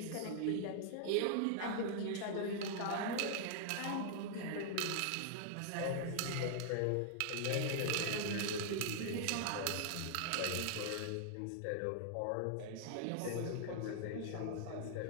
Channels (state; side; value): different; both; correlation 0.00